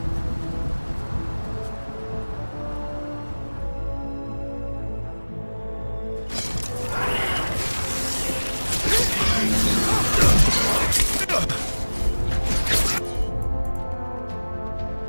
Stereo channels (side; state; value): both; inverted; correlation -1.00